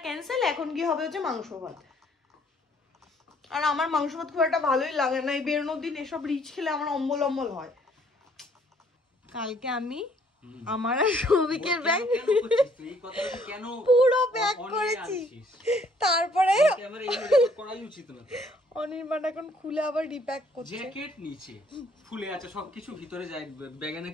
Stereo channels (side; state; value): both; normal; correlation 0.63